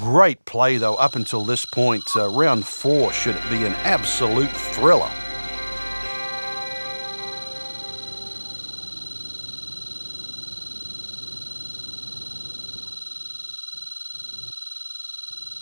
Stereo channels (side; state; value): both; inverted; correlation -1.00